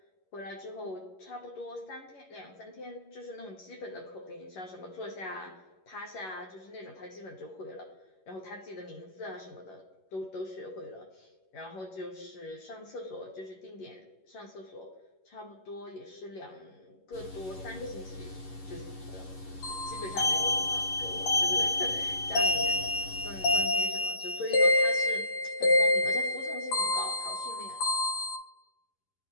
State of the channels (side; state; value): right; late; 11 ms